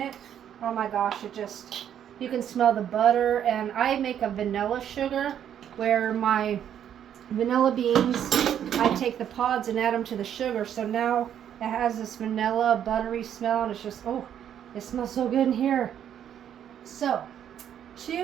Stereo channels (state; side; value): quieter; left; 9.7 dB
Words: oh my gosh, you can smell the butter. And I make a vanilla sugar, where my vanilla beans, I take the pods and add them to the sugar. So now it has this vanilla buttery smell, and it's just, oh, it smells so good in here. So,